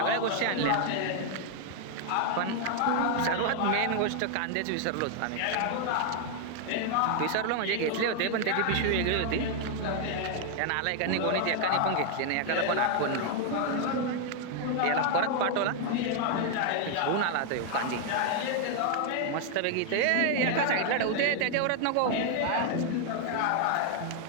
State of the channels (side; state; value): both; different; correlation 0.00